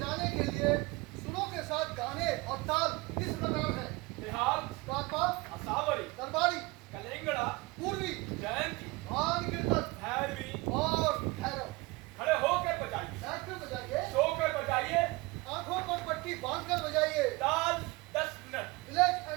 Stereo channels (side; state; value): left; quieter; 23.5 dB